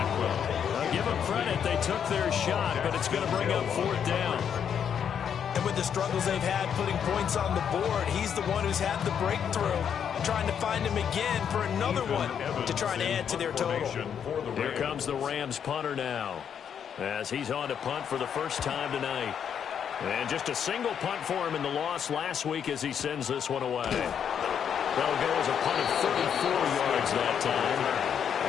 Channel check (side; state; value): right; quieter; 8.1 dB